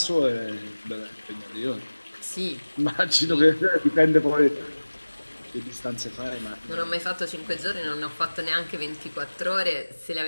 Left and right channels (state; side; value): inverted; both; correlation -1.00